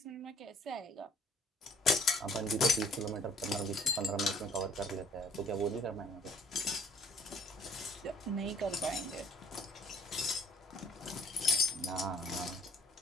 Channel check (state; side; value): normal; both; correlation 0.59